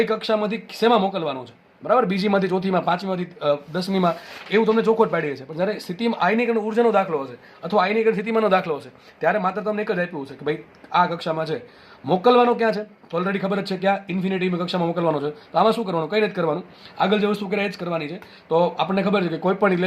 કક્ષામાંથી શેમાં મોકલવાનો છે. બરાબર, બીજીમાંથી ચોથીમાં, પાંચમીમાંથી 10મીમાં, એવું તમને ચોખવટ પાડી છે. પણ જ્યારે સ્થિતિમાં આયનીકરણ ઉર્જાનો દાખલો હશે અથવા આયનીકરણ સ્થિતિમાનનો દાખલો હશે ત્યારે માત્ર તમને એક જ આપ્યું છે કે ભાઈ આ કક્ષામાં છે, મોકલવાનો ક્યાં છે તો ઓલરેડી ખબર જ છે ક્યાં ઇન્ફિનિટીની કક્ષામાં મોકલવાનો છે. તો આમાં શું કરવાનું? કંઈ નથી કરવાનું, આગળ જે વસ્તુ કરે એ જ કરવાની છે. તો આપણને ખબર છે કે કોઈ પણ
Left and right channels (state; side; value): identical; both; correlation 1.00